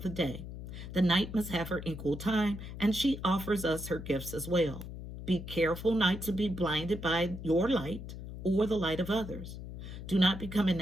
the day. The night must have her equal time, and she offers us her gifts as well. Be careful not to be blinded by your light or the light of others. Do not become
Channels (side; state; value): left; noise; hum, 10 dB below the sound